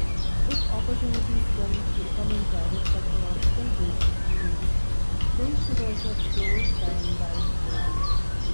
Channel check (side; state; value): both; inverted; correlation -1.00